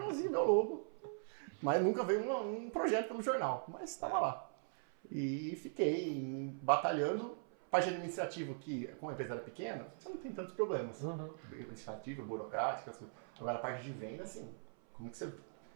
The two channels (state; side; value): silent; left; 51 dB below the other